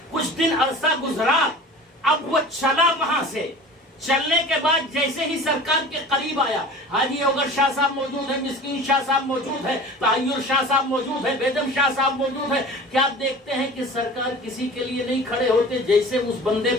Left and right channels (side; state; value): both; normal; correlation 0.39